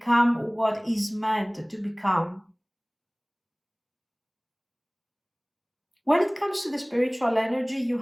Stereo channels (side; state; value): both; identical; correlation 1.00